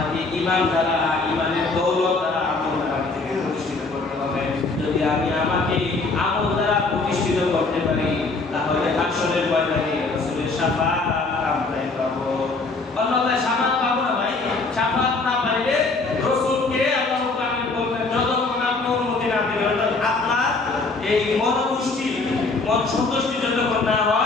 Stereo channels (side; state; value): right; quieter; 3.7 dB